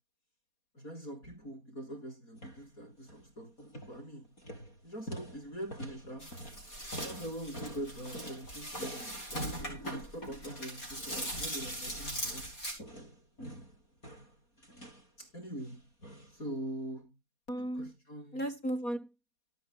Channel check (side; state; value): right; late; 4.2 ms